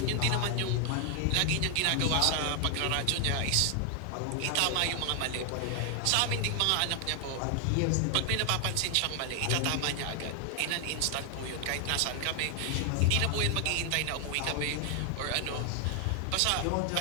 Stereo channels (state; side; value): different; both; correlation 0.00